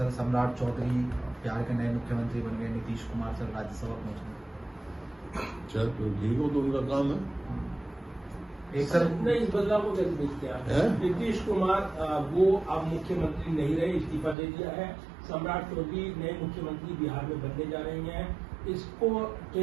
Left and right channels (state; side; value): drops out; left; at 14.4 s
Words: सम्राट चौधरी बिहार के नए मुख्यमंत्री बन गए, नीतीश कुमार सर राज्यसभा पहुंचे। चल तो ठीक हो, तो उनका काम है। एक सर नहीं, इस बदलाव को कैसे देखते हैं आप? नीतीश कुमार वो अब मुख्यमंत्री नहीं रहे, इस्तीफा दे दिया है। सम्राट चौधरी नए मुख्यमंत्री बिहार में बनने जा रही हैं। इसको